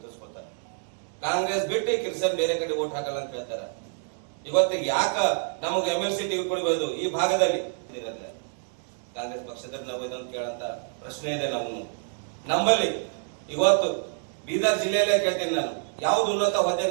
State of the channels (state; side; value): silent; left; 60 dB below the other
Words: ಕಾಂಗ್ರೆಸ್ ಬಿಟ್ಟು ಕ್ರಿಶ್ಚಿಯನ್ ಬೇರೆ ಕಡೆ ಓಟ್ ಹಾಕಲ್ಲ ಅಂತ ಹೇಳ್ತಾರೆ. ಇವತ್ತಿಗೆ ಯಾಕ ನಮಗೆ MLC ಟಿಕೆಟ್ ಕೊಡಬಹುದು ಈ ಭಾಗದಲ್ಲಿ? ಕಾಂಗ್ರೆಸ್ ಪಕ್ಷದಲ್ಲಿ ನಾವು ಇದನ್ನು ಕೇಳಂತ ಪ್ರಶ್ನೆ ಇದೆ ನಮ್ಮಲ್ಲಿ. ಇವತ್ತು ಬೀದರ್ ಜಿಲ್ಲೆಯಲ್ಲೇ ಕೇಳ್ತೀನಿ ನಾನು, ಯಾವ್ದು ಉನ್ನತ ಹುದ್ದೆ